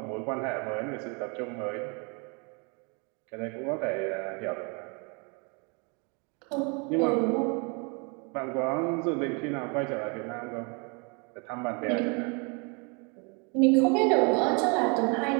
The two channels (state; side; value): quieter; left; 33.2 dB